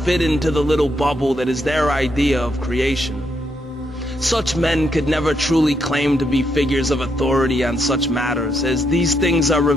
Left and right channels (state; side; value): normal; both; correlation 0.78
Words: into the little bubble that is their idea of creation. Such men could never truly claim to be figures of authority on such matters, as these things are